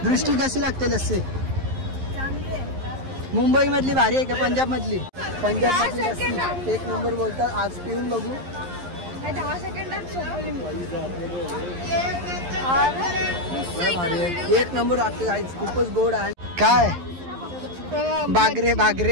दृष्टी कशी लागते लस्सी? मुंबई मधली भारी आहे का पंजाब मधली? पंजाब मधली लस्सी एक नंबर बोलतात. आज पिऊन बघू. 10 सेकंदात एक नंबर वाटते गाईच. खूपच गोड आहे. काय बागरे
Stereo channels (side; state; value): left; late; 11 ms